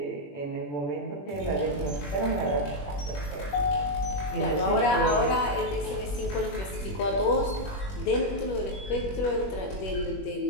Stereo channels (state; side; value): late; right; 21 ms